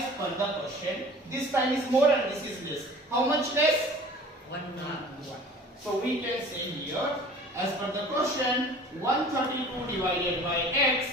per the question, this time is more and this is less. How much less? 1 hour. So we can say here as per the question 132 divided by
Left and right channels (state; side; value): normal; both; correlation 0.45